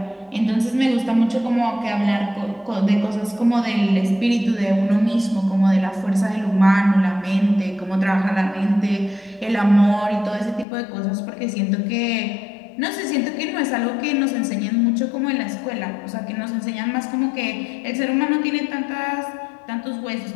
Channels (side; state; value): right; drops out; at 10.7 s